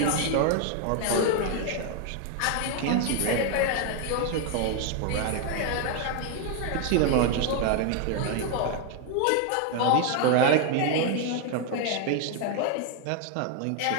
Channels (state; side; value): different; both; correlation 0.00